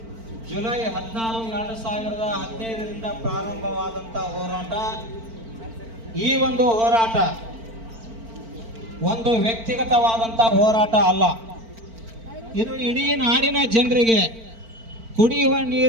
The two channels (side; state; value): left; late; 4.4 ms